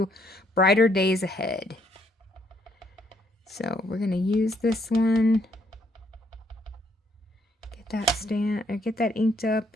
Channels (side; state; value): both; normal; correlation 0.70